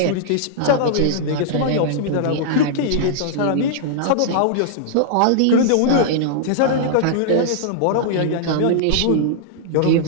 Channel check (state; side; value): different; both; correlation -0.02